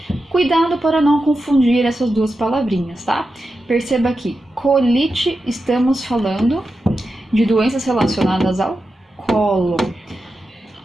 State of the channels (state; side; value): normal; both; correlation 0.90